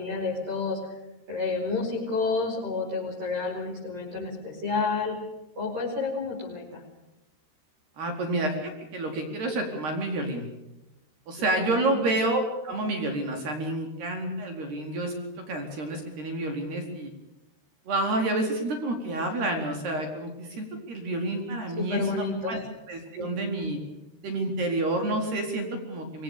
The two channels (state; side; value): late; left; 13 ms